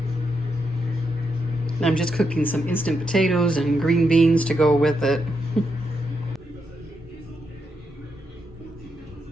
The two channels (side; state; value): both; normal; correlation 0.82